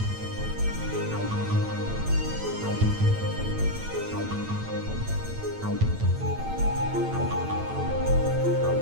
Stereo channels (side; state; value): left; late; 9.0 ms